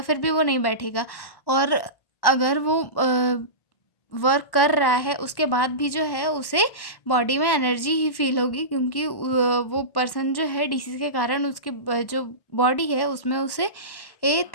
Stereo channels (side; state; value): right; late; 1.1 ms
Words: भी वो नहीं बैठेगा। और अगर वो वर्क कर रहा है उसके बाद भी जो है उसे बॉडी में एनर्जी ही फील होगी, क्योंकि वो पर्सन जो है डीसीज के कारण उसके जो बॉडी है उसमें उसे